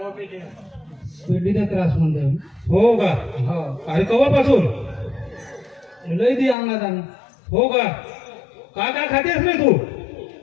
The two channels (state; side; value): drops out; right; at 6.6 s